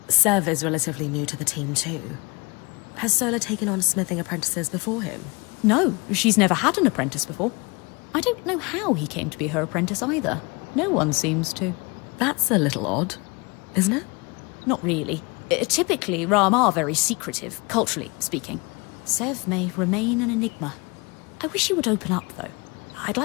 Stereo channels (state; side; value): quieter; right; 27.8 dB